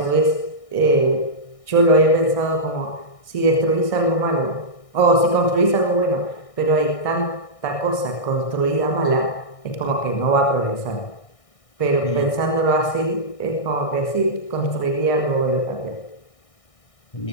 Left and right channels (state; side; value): late; right; 1.6 ms